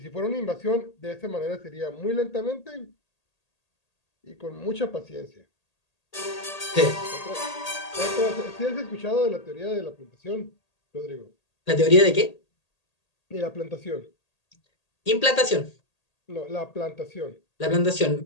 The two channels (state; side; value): late; right; 1.8 ms